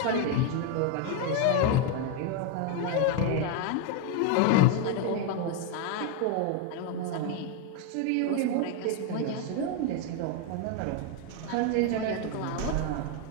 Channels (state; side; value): different; both; correlation 0.01